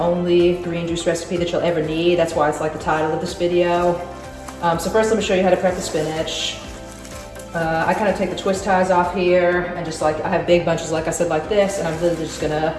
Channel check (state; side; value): identical; both; correlation 1.00